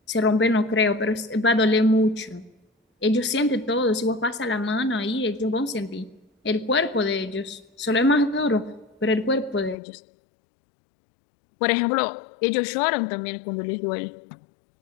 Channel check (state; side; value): drops out; right; at 9.8 s